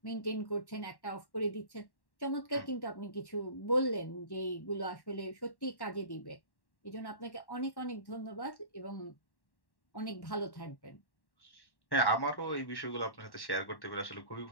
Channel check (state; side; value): late; right; 1.1 ms